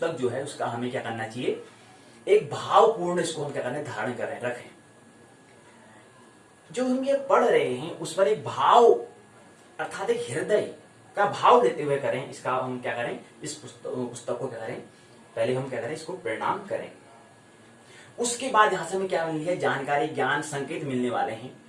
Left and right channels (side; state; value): both; identical; correlation 1.00